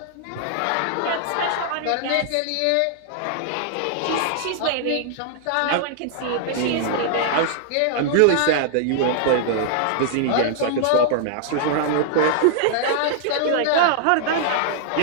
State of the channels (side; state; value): both; different; correlation -0.01